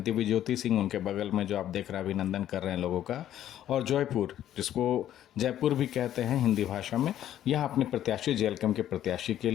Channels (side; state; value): right; quieter; 11.6 dB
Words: दिव्य ज्योति सिंह उनके बगल में जो आप देख रहे हैं, अभिनंदन कर रहे हैं लोगों का। और जयपुर, जिसको जयपुर भी कहते हैं हिंदी भाषा में, यहाँ अपने प्रत्याशी जेएलकेएम के प्रत्याशी के